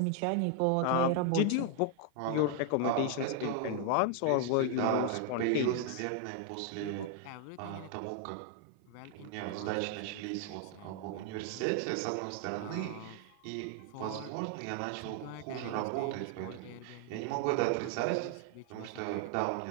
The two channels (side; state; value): both; different; correlation 0.00